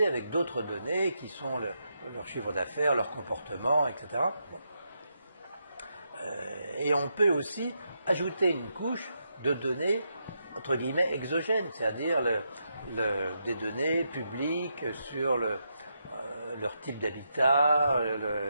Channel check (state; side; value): inverted; both; correlation -0.82